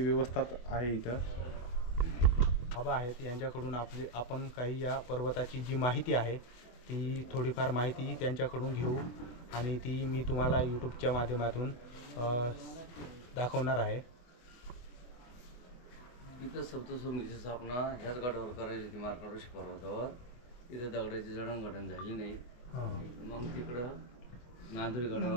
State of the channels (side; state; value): right; late; 24 ms